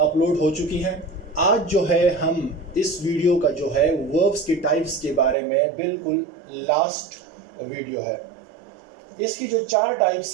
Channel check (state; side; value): drops out; left; at 5.4 s